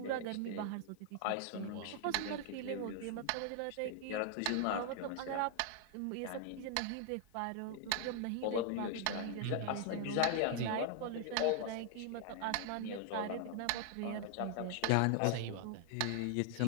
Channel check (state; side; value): different; both; correlation 0.00